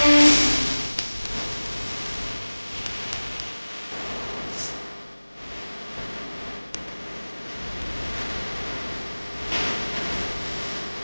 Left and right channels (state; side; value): inverted; both; correlation -1.00